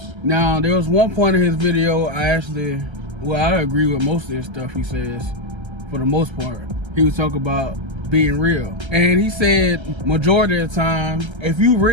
Now, there was one point in his video I agree with most of this stuff he says, for the most part. He was talking about being real. And he said majority of the time, if you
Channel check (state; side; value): late; left; 1.3 ms